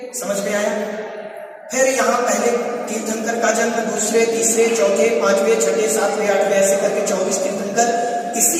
समझ में आया? फिर यहाँ पहले तीर्थंकर का जन्म, दूसरे, तीसरे, चौथे, पांचवें, छठे, सातवें, आठवें, ऐसे करके 24 तीर्थंकर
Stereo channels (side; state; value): both; identical; correlation 1.00